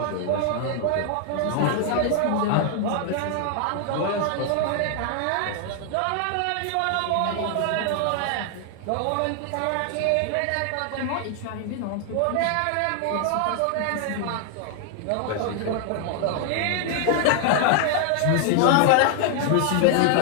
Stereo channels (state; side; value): different; both; correlation 0.00